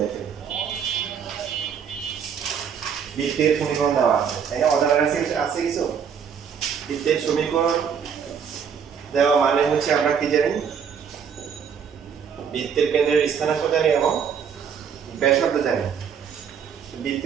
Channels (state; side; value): quieter; left; 7.2 dB